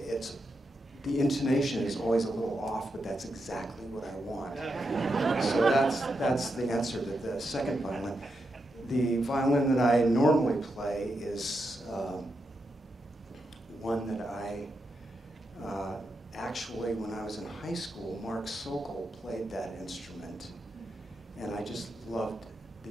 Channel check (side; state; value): both; normal; correlation 0.85